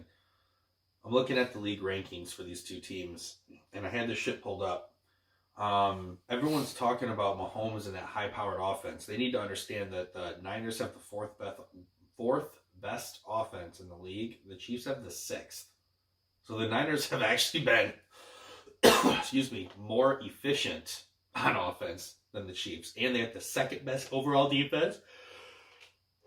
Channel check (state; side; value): identical; both; correlation 1.00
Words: I'm looking at the league rankings for these two teams, and I had this shit pulled up. Everyone's talking about Mahomes and that high-powered offense. They need to understand that the Niners have the fourth best offense in the league. The Chiefs have the sixth. So the Niners have actually been, more efficient on offense than the Chiefs. And they have the second best overall defense.